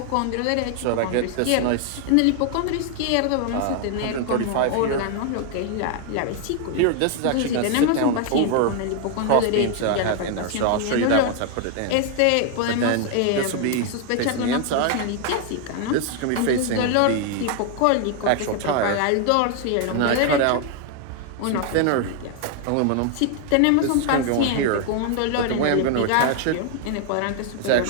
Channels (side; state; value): both; different; correlation 0.00